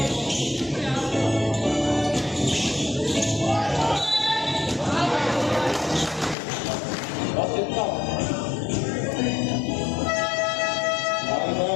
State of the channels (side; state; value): right; drops out; at 6.4 s